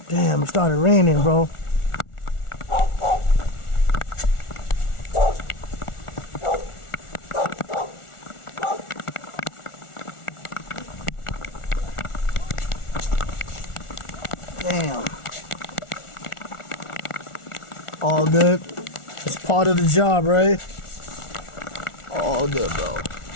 Damn, it started raining, bro. Damn. All good. It's part of the job, right? All good, bro.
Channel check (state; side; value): late; right; 1.4 ms